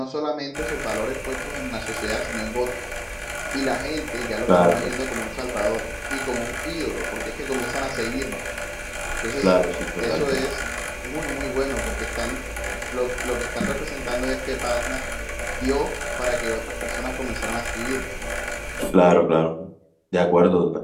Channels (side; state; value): both; identical; correlation 1.00